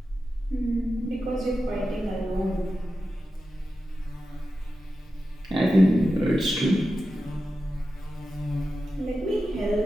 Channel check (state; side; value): normal; both; correlation 0.91